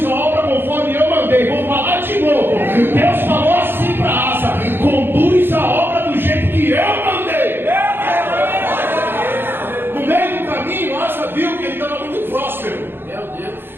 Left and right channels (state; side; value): late; left; 0.10 ms